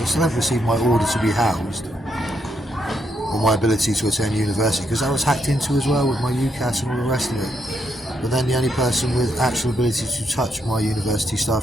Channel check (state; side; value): normal; both; correlation 0.77